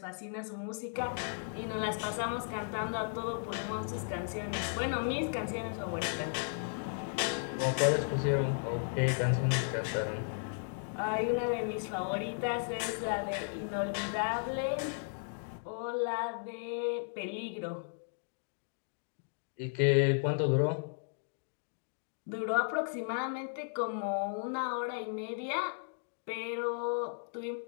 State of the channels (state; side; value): silent; right; digital silence